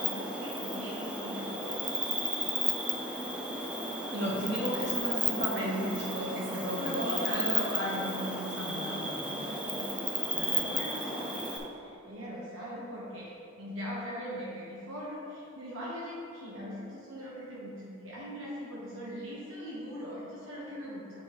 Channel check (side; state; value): both; normal; correlation 0.47